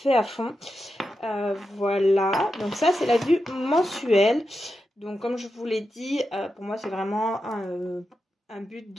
à fond. Voilà, donc ça c'est la vue mensuelle. Donc comme je vous l'ai dit, pour moi c'est vraiment un but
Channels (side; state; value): both; normal; correlation 0.88